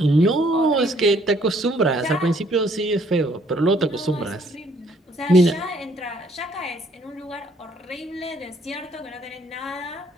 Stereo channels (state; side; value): normal; both; correlation 0.64